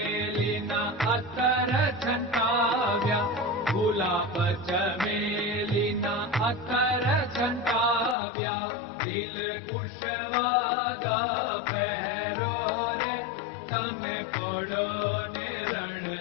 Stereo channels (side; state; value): right; drops out; at 8.2 s